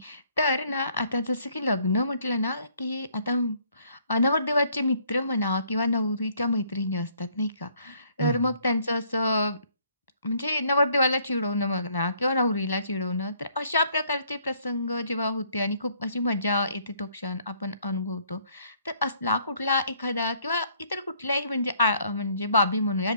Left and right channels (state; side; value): inverted; both; correlation -0.65